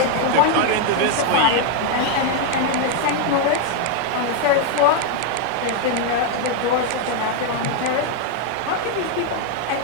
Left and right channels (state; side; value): different; both; correlation 0.01